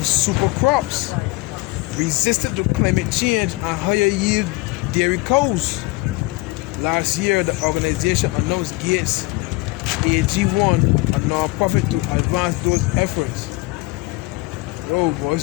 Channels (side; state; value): right; quieter; 22.2 dB